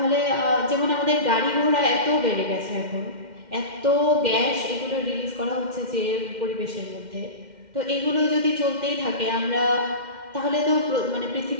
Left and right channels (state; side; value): late; left; 2.1 ms